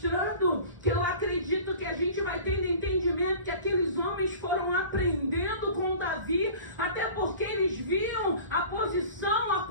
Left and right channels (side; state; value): both; inverted; correlation -0.41